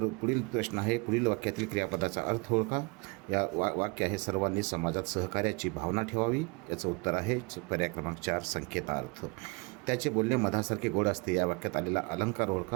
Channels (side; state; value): left; quieter; 30.0 dB